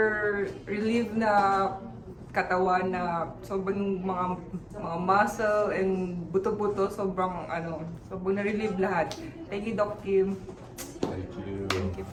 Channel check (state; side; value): identical; both; correlation 1.00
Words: relief na katawan na sobrang mga muscle and buto-buto, sobrang na-relieve lahat. Thank you, Doc Kim. Thank you. Thank you